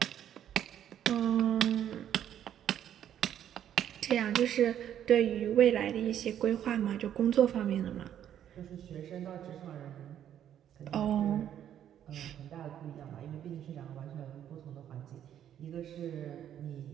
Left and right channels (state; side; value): quieter; left; 10.3 dB